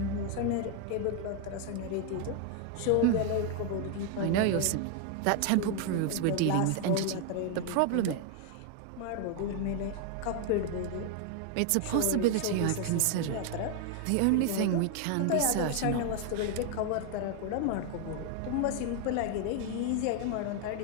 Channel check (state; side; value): different; both; correlation 0.01